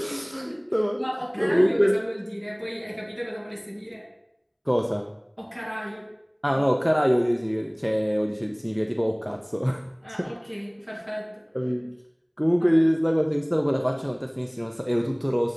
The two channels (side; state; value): both; identical; correlation 1.00